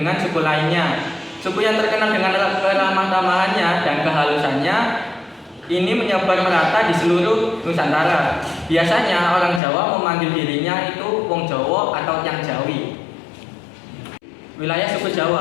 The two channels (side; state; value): right; drops out; at 9.6 s